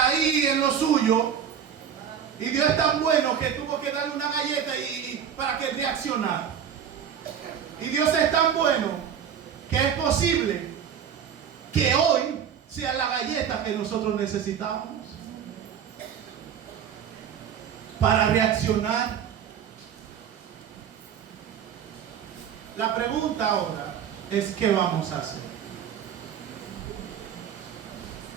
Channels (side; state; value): left; quieter; 8.4 dB